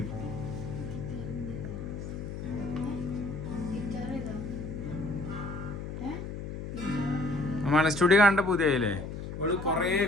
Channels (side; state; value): left; noise; hum, 7 dB below the sound